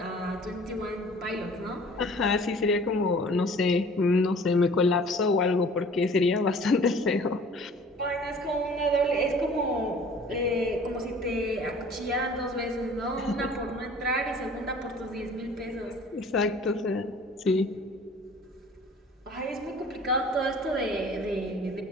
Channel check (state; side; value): normal; both; correlation 0.49